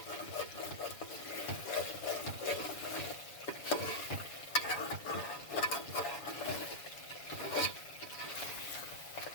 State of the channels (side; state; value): right; late; 7.1 ms